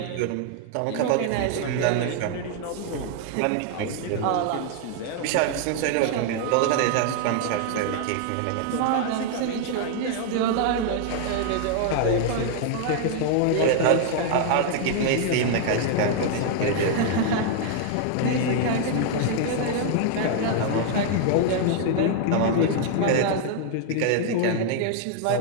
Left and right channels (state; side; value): different; both; correlation 0.00